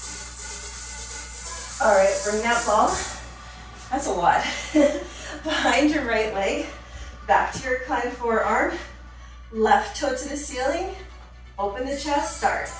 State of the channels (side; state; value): both; identical; correlation 1.00